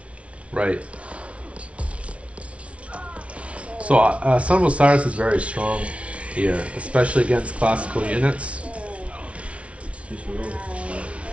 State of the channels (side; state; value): left; late; 0.062 ms